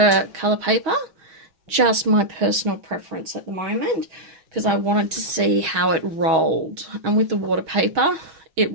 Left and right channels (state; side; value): late; left; 6.3 ms